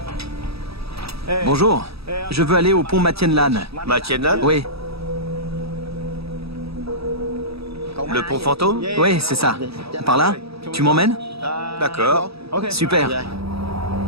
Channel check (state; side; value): late; left; 0.77 ms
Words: Bonjour, je veux aller au pont Matienne Lan. Matienne Lan? Oui, Le pont fantôme? oui, c'est ça. Par là? Tu m'emmènes? D'accord. Super.